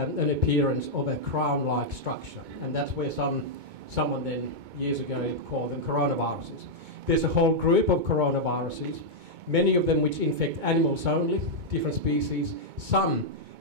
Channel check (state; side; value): late; left; 2.2 ms